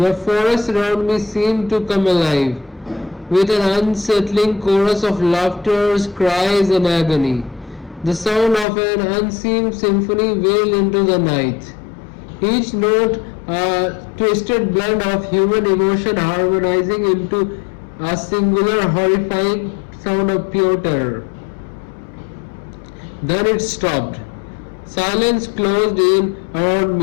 forest around me seemed to come alive, with an unsettling chorus of laughter, cries, and agony. The sound of an unseen symphony wailed into the night, each note a twisted blend of human emotion harmonizing into a singular horrifying sound of pure terror. Then it stopped. Silence closed in around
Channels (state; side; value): drops out; right; at 8.7 s